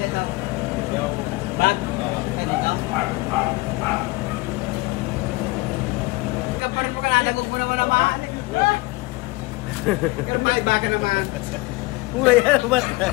daw. Bag? Ganito? Ikaw pa rin mo ka nanagog mo naman naman. Pero maiba ka naman. Mulai yan, mata.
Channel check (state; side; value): quieter; right; 22.4 dB